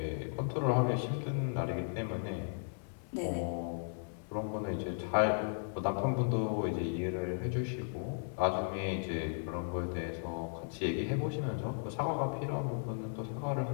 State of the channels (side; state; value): right; silent; digital silence